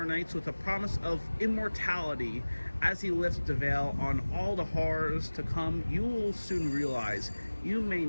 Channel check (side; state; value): both; inverted; correlation -1.00